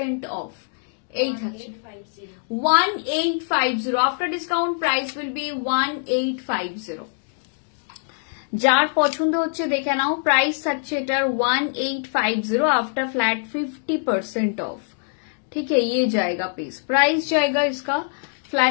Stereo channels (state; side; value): silent; right; digital silence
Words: of. এই থাকছে 1850। After discount price will be 1850। যার পছন্দ হচ্ছে দেখে নাও, প্রাইস থাকছে এটার 1850 आफ्टर फ्लैट 50% ऑफ। ठीक है, ये जाएगा पीस, प्राइस जाएगा इसका